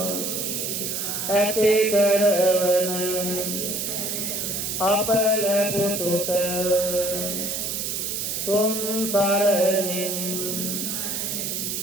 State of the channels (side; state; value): right; noise; hiss, 2 dB below the sound